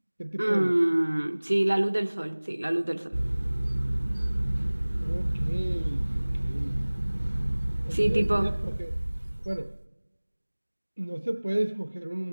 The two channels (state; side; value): inverted; both; correlation -1.00